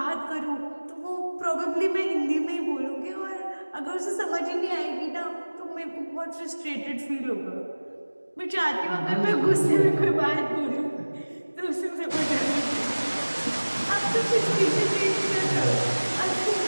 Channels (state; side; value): inverted; both; correlation -1.00